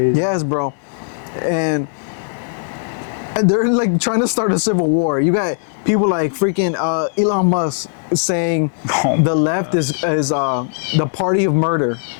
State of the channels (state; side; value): silent; right; 62 dB below the other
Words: Yes, bro. And they're like trying to start a civil war. You got people like freaking Elon Musk saying the left is the party of murder.